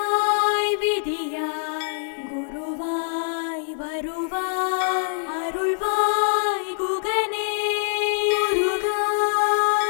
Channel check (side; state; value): right; silent; 63 dB below the other